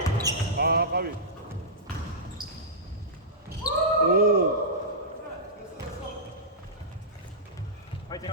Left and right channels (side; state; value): both; normal; correlation -0.15